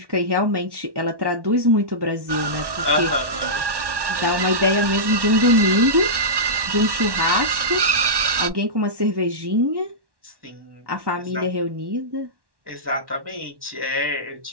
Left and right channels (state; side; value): late; left; 1.1 ms